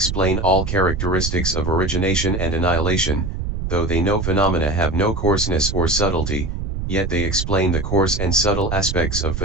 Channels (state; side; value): noise; right; rumble, 4 dB below the sound